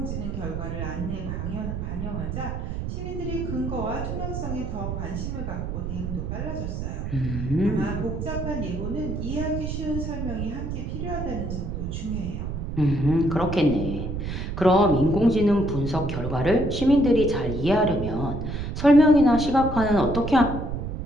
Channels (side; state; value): right; noise; rumble, 5 dB below the sound